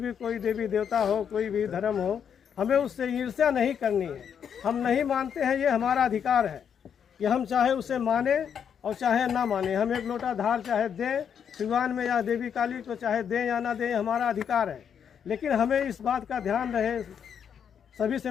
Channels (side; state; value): right; quieter; 7.9 dB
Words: कोई देवी देवता हो, कोई भी धर्म हो, हमें उससे ईर्ष्या नहीं करनी है। हम नहीं मानते हैं, ये हमारा अधिकार है कि हम चाहे उसे माने और चाहे ना माने। हम एक लोटा धार चाहे दें सिवान में या देवी काली को, चाहे दें या ना दें, हमारा अधिकार है। लेकिन हमें इस बात का ध्यान रहे, सभी से